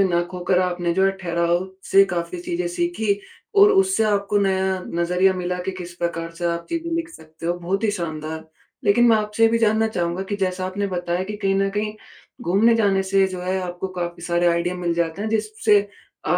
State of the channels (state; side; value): identical; both; correlation 1.00